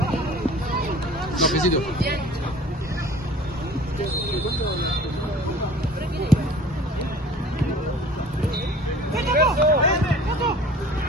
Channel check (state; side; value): normal; both; correlation 0.47